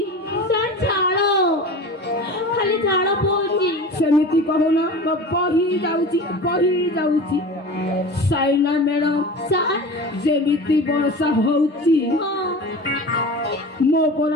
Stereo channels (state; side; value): normal; both; correlation 0.34